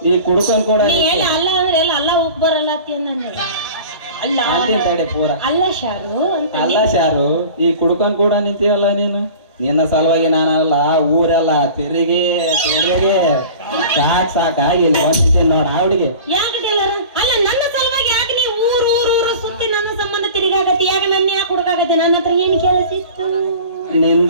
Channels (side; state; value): both; inverted; correlation -0.40